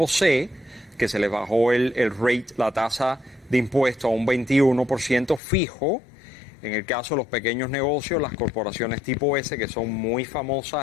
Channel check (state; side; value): drops out; right; at 5.4 s